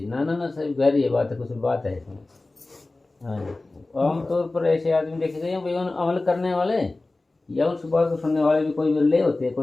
ना ना ना सही गहरी ये बात है, कुछ बात है इसमें। हाँ जी, आमतौर पर ऐसे आदमी देखे गए हैं भाई, उन अमल करने वाले या उस बात को सुनने वाले भी कोई बिरले होते हैं,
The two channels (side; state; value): right; quieter; 3.1 dB